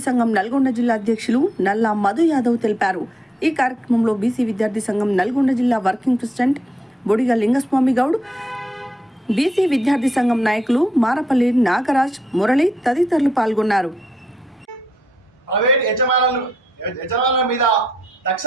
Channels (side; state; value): both; normal; correlation 0.79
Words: సంఘం నల్గొండ జిల్లా అధ్యక్షులు నల్లా మధు యాదవ్ తెలిపారు. ఈ కార్యక్రమంలో బీసీ విద్యార్థి సంఘం నల్గొండ జిల్లా working president Bodiga Lingaswamy Goud, BC విద్యార్థి సంఘం నాయకులు మారపల్లి నాగరాజ్, మురళి తదితరులు పాల్గొన్నారు. ప్రైవేట్ యజమానుల మీద